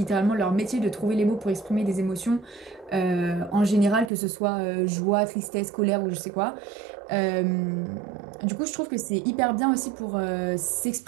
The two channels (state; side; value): drops out; left; at 4.1 s